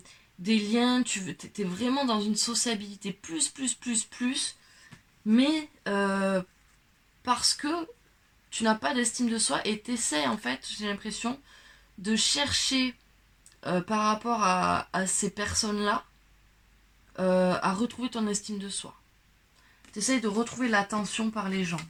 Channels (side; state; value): both; identical; correlation 1.00